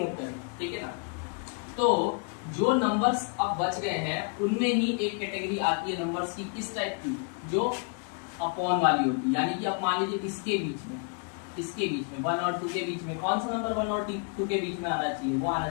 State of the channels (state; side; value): quieter; right; 38.2 dB